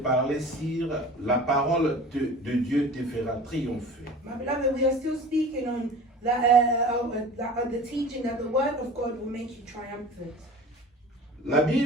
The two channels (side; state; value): both; normal; correlation 0.40